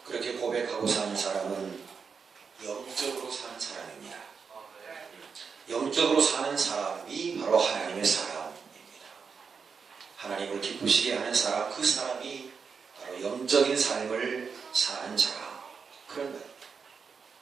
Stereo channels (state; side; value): quieter; left; 5.7 dB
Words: 그렇게 고백하고 사는 사람은 영적으로 사는 사람입니다. 영적으로 사는 사람이 바로 하나님의 사람입니다. 하나님을 기쁘시게 하는 사람, 그 사람이 바로 영적인 삶을 사는 자라, 그런 말입니다.